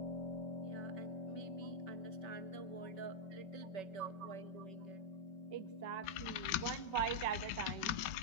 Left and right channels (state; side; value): late; right; 5.2 ms